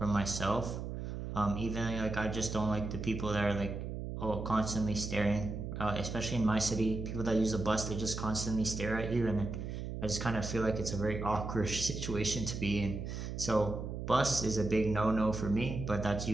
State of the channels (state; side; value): noise; right; hum, 6 dB below the sound